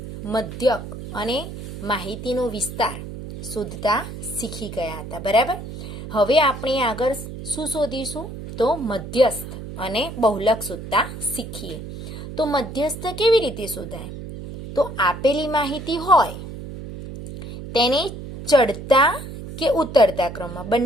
મધ્યક અને માહિતીનો વિસ્તાર શોધતા શીખી ગયા હતા, બરાબર. હવે આપણે આગળ શું શોધીશું? તો મધ્યસ્થ અને બહુલક શોધતા શીખીએ. તો મધ્યસ્થ કેવી રીતે શોધાય? તો આપેલી માહિતી હોય તેને ચડતા કે ઉતરતા ક્રમમાં,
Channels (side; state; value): right; noise; hum, 10 dB below the sound